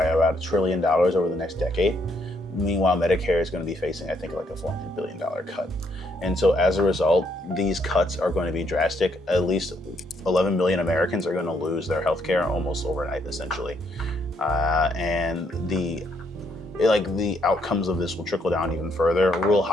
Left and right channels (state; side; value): normal; both; correlation 0.72